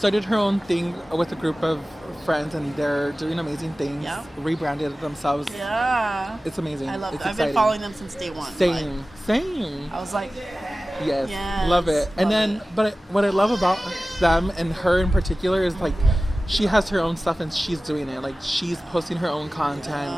her own thing with a group of friends and they're doing amazing things. Yeah. Rebranded themselves. Yeah. It's amazing. I love it's that. I've exciting. been following them since day one. Same. I was like, yes, yes, love it. And love then, it. but what I love about them and her in particular is like, she has her own stuff and she's doing it. Like, she's posting her own content.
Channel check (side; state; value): both; normal; correlation 0.96